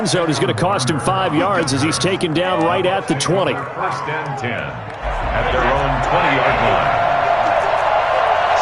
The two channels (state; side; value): identical; both; correlation 1.00